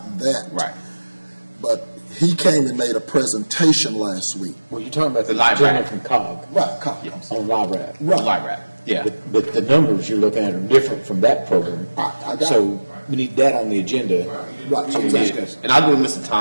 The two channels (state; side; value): inverted; both; correlation -1.00